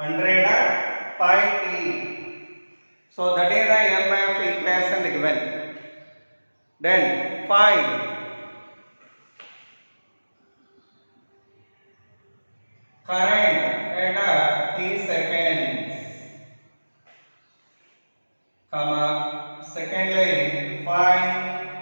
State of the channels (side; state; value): both; inverted; correlation -1.00